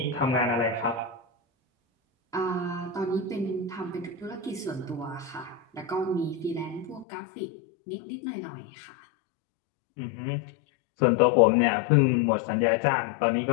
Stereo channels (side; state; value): right; drops out; at 7.1 s